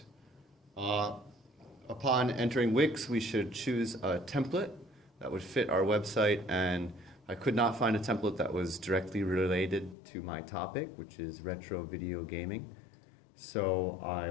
Upon entering Wix, we should choose a template that would fit our website, and I could not find a template that was directly related to my topic, which is retro video gaming. So I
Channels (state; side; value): drops out; right; at 10.0 s